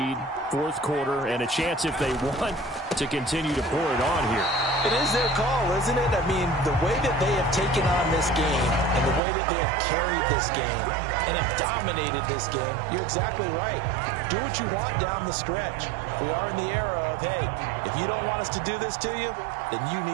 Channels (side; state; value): left; drops out; at 9.2 s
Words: fourth quarter, and a chance if they want to continue to pour it on here. It is their call, isn't it? I mean, the way that they have taken on this game and the way that they have carried this game and have dominated this game, you're exactly right. Do what you want down the stretch. We are in the era of, hey, if you don't want us to do this to you, then you